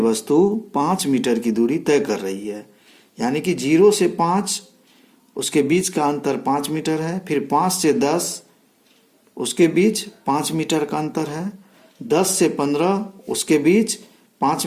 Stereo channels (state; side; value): identical; both; correlation 1.00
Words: 5 मीटर की दूरी तय कर रही है। यानी कि 0 से 5 उसके बीच का अंतर 5 मीटर है, फिर 5 से 10 उसके बीच 5 मीटर का अंतर है, 10 से 15 उसके बीच 5